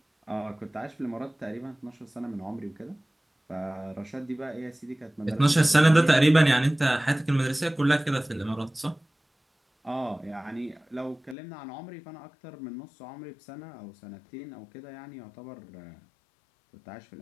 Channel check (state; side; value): drops out; right; at 11.4 s